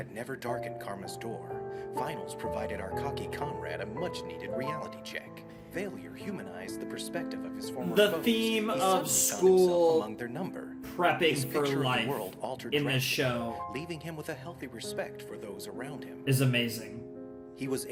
never darkened Karma's door, Finals provided our cocky comrade a much-needed reality check. Failure humanized the perspective of his former The foes. theme He of suddenly found school himself among their number. prepping His for picture of the life world altered in this drastically, show leaving him with a healthy respect for those around him. is amazing. He was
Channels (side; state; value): both; identical; correlation 1.00